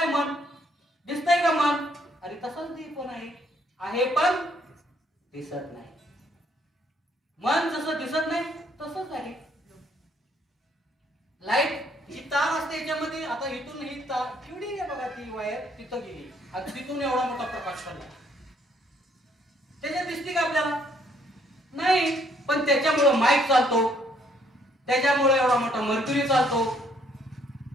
मन? दिसतंय का मन? अरे तसंच ते पण आहे पण दिसत नाही. मन जसं दिसत नाही तसंच आहे. लाईट ही तार असते याच्यामध्ये, आता इथून ही तार केवढी आहे बघा, ती वायर तिथं गेली आणि तिथून एवढा मोठा प्रकाश पडला, त्याच्यात दिसते का आपल्याला? नाही. पण त्याच्यामुळं माईक चालतो, त्याच्यामुळे एवढा मोठा मर्क्युरी चालतो,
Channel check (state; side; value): normal; both; correlation 0.67